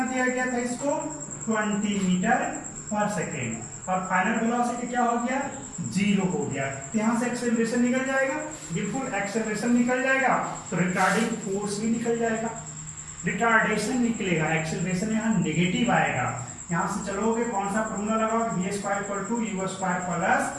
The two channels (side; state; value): both; identical; correlation 1.00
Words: दिया गया था इसको? 20 मीटर पर सेकेंड। और फाइनल वेलोसिटी क्या हो गया? 0 हो गया। तो यहाँ से एक्सेलरेशन निकल जाएगा, बिल्कुल एक्सेलरेशन निकल जाएगा, तो रिटार्डिंग फोर्स भी निकल जाएगा। रिटार्डेशन निकलेगा, एक्सेलरेशन यहाँ नेगेटिव आएगा। यहाँ से चलोगे कौन सा फॉर्मूला लगाओगे? v² = u² +